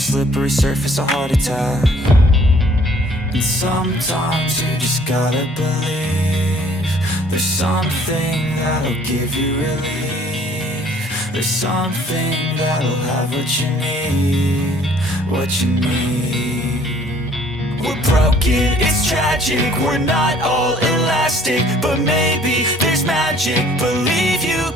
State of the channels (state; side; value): normal; both; correlation 0.57